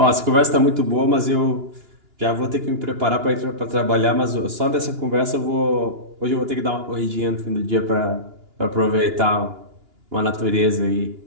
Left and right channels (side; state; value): left; late; 2.9 ms